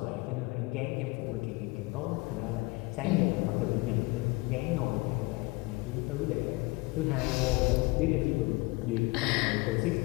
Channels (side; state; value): right; quieter; 24.9 dB